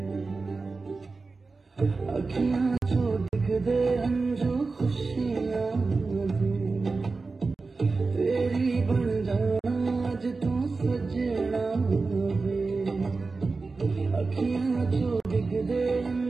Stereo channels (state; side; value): quieter; left; 4.0 dB